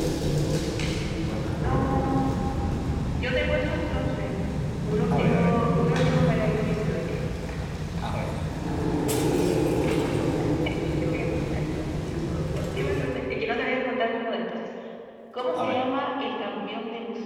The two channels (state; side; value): identical; both; correlation 1.00